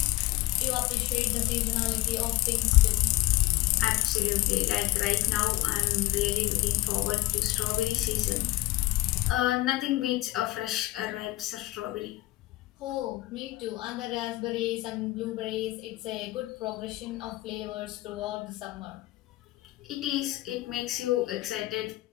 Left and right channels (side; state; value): right; quieter; 18.3 dB